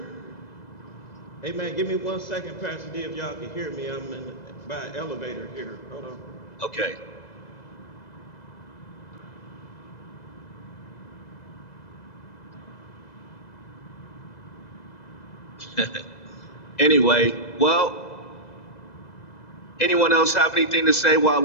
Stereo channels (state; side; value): late; right; 2.0 ms